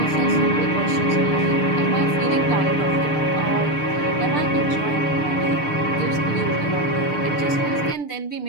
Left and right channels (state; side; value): late; right; 6.7 ms